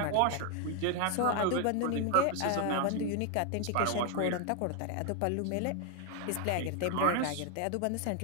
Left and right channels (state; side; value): different; both; correlation 0.01